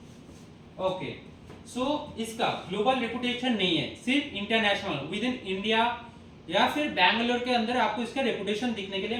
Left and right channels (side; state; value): both; identical; correlation 1.00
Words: ओके, सो इसका ग्लोबल रेपुटेशन नहीं है, सिर्फ इंटरनेशनल विद इन इंडिया या फिर बैंगलोर के अंदर आपको इसका रेपुटेशन दिखने के लिए